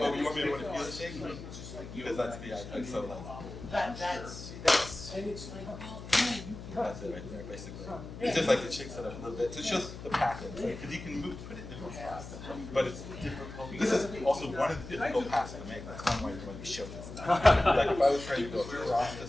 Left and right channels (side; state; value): left; noise; hum, 12 dB below the sound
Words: you want me to feel it shake? Because that's the idea, so like, that's it right there, basically. It's just like it shakes it up a little bit. So it shows the pattern, because you can put it in different spots, but it's difficult. This is also one of the difficult paths to make. That's one way you're going to show this. Like if I was trying to go across to